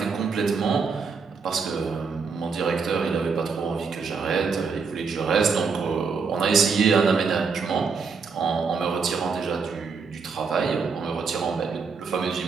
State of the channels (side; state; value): left; quieter; 5.2 dB